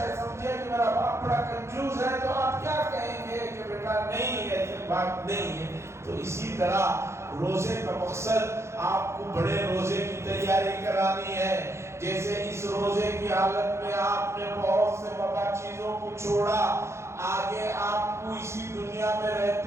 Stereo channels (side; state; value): left; late; 0.13 ms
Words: سمجھے کہ میرا باپ بڑا کنجوس ہے تو آپ کیا کہیں گے کہ بیٹا نہیں، ایسی بات نہیں ہے۔ تو اسی طرح روزے کا مقصد آپ کو بڑے روزے کی تیاری کرانی ہے۔ جیسے اس روزے کی حالت میں آپ نے بہت سے مباح چیزوں کو چھوڑا، آگے آپ کو اسی دنیا میں